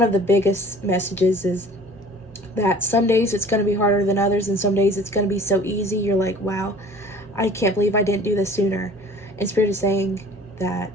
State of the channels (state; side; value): normal; both; correlation 0.48